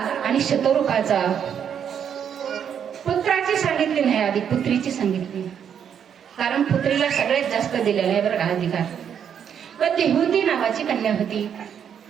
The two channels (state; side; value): quieter; left; 8.3 dB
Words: आणि शतरूपाचा पुत्राची सांगितली नाही, आधी पुत्रीची सांगितली. कारण पुत्रीला सगळ्यात जास्त दिलेला आहे बरं का अधिकार. पण देहूती नावाची कन्या होती.